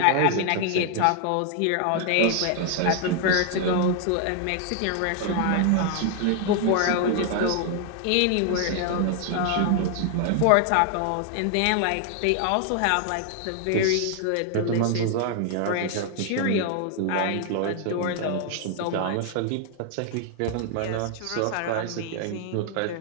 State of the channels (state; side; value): different; both; correlation 0.00